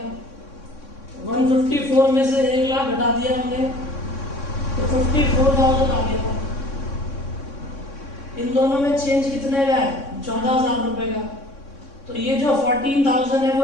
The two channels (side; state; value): right; late; 3.6 ms